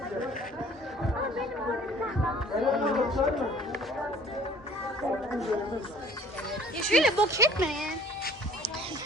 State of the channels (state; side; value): normal; both; correlation 0.52